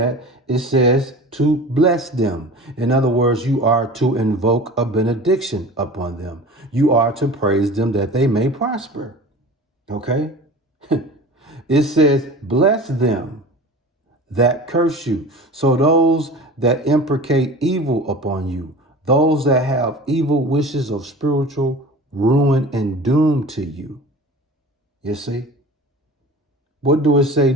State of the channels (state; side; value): normal; both; correlation 0.38